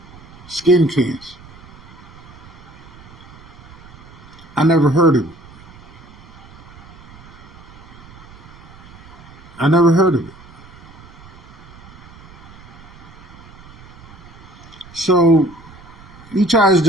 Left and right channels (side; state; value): right; noise; rumble, 20 dB below the sound